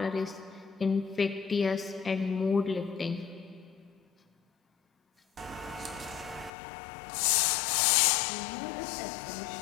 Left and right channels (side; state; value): right; drops out; at 6.5 s